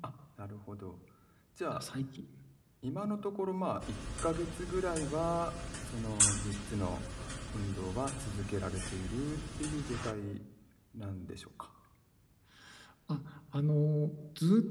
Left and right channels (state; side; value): identical; both; correlation 1.00